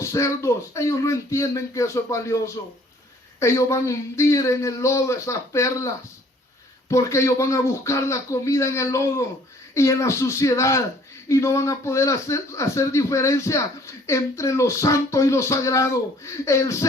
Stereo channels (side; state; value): both; normal; correlation 0.57